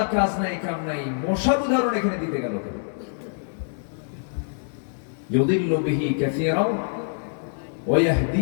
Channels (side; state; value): right; silent; digital silence